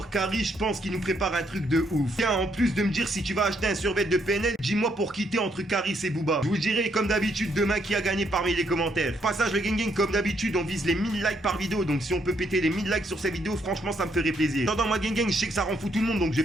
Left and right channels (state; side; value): normal; both; correlation 0.73